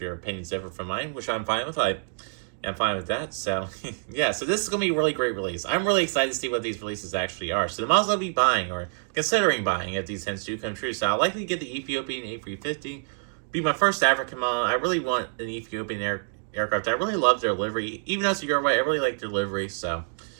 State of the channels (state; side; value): silent; left; digital silence